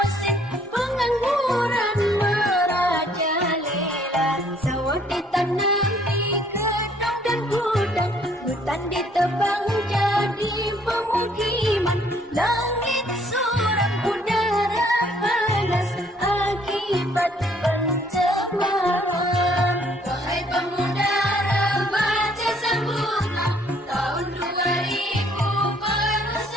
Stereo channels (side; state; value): both; normal; correlation 0.63